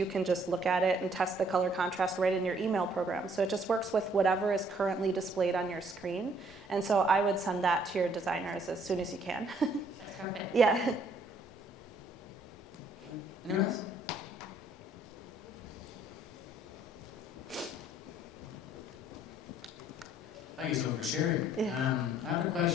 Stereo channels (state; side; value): normal; both; correlation 0.64